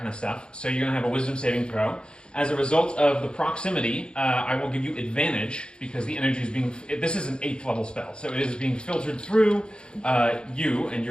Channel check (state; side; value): late; right; 0.052 ms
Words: of stuff. So you're going to have a wisdom saving throw. As a result of the proximity, I will give you advantage because the energy is being. This is an 8th level spell, so it is being filtered through you and